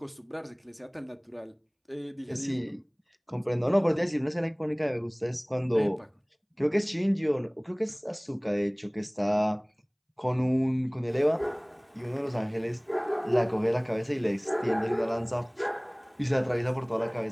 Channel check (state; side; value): identical; both; correlation 1.00